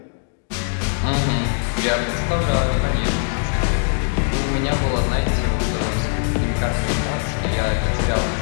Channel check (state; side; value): silent; right; digital silence